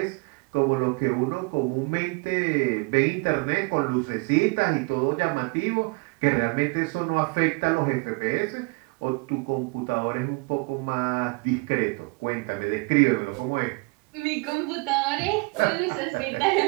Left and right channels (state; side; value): quieter; left; 30.9 dB